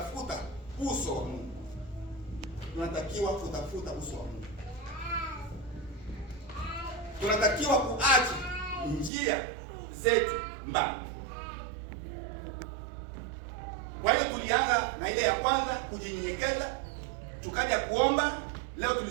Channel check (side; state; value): left; drops out; at 9.1 s